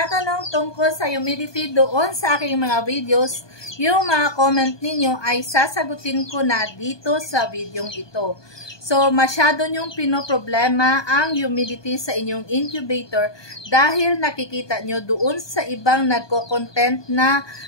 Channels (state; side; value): late; right; 1.2 ms